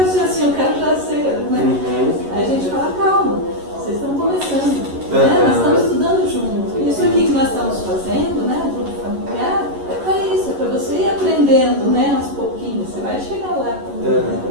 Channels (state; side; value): late; left; 11 ms